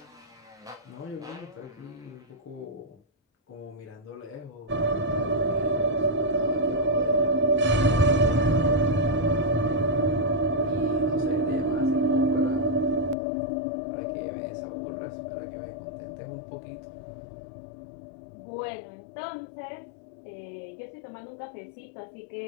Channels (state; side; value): drops out; right; at 13.2 s